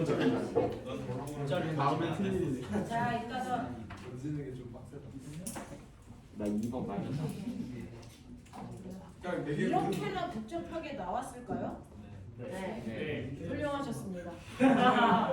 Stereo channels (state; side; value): identical; both; correlation 1.00